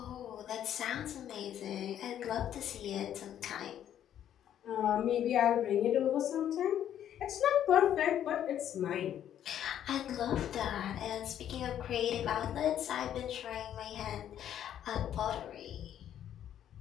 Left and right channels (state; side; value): quieter; right; 10.5 dB